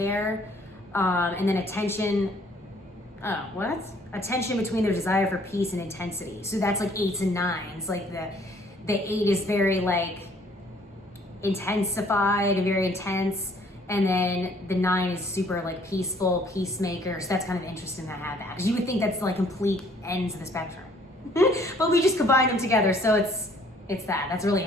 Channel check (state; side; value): normal; both; correlation 0.60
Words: And then attention between their desire for peace and intensity. So that's like 8s and 9s. Like the 8 is very like intensified and very intense. And then the 9 is super like peaceful, peacemaker. So that's kind of interesting to have that. Because you would think that's like complete ends of the spectrum. But we just combine them together. So it's that. That's really